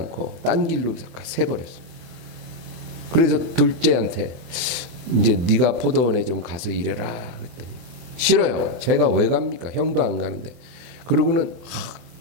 딴 길로 새버렸어요. 그래서 둘째한테 이제 네가 포도원에 좀 가서 일해라 그랬더니 싫어요. 제가 왜 갑니까? 형도 안 가는데. 그러고는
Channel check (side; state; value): left; late; 24 ms